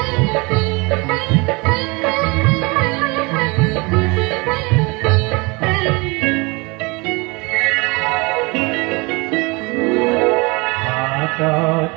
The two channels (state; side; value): quieter; left; 27.0 dB